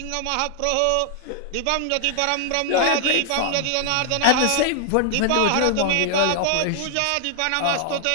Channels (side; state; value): both; different; correlation 0.00